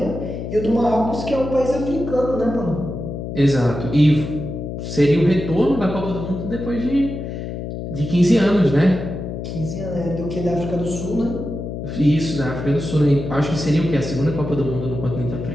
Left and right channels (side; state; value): left; noise; hum, 6 dB below the sound